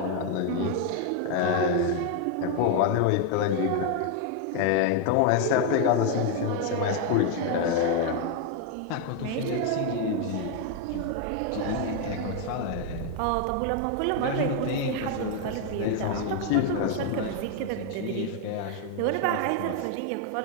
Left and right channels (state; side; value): different; both; correlation 0.01